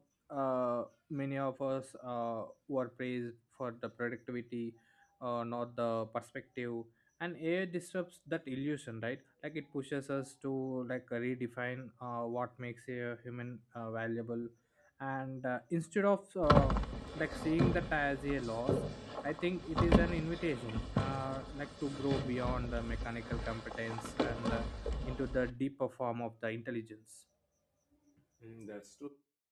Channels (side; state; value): both; identical; correlation 1.00